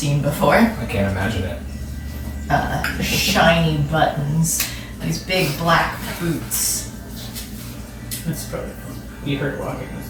before. I can't imagine it. Shiny buttons, these big black boots. That's probably you heard walking with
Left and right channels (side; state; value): both; identical; correlation 1.00